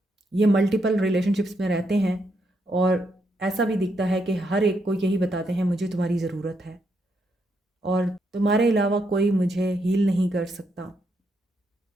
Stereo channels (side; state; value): both; normal; correlation 0.79